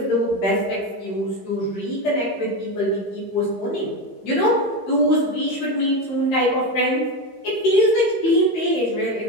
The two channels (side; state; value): right; late; 15 ms